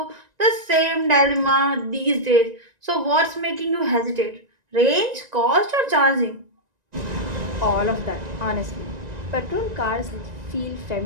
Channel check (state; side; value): late; left; 1.9 ms